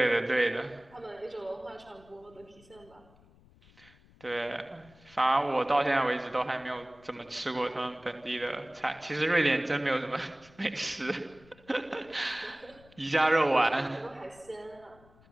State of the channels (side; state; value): left; noise; rumble, 27 dB below the sound